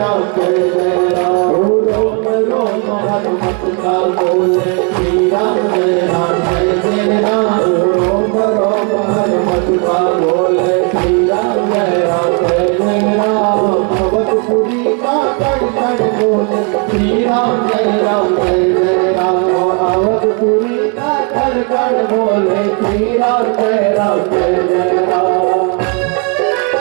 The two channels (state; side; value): quieter; left; 36.9 dB